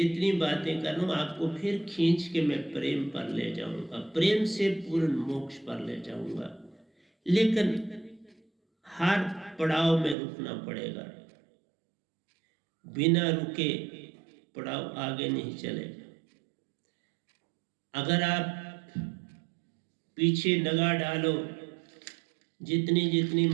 बातें कर रहा हूँ आपको फिर खींच के मैं प्रेम पर ले जाऊंगा, प्रेम से पूर्ण मोक्ष पर ले जाऊंगा, लेकिन हर पड़ाव में रुकना पड़ेगा। बिना रुके पड़ाव आगे नहीं चलेगा। अगर आप पीछे निगाह डालो, जितनी जितनी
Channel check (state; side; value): drops out; left; at 10.2 s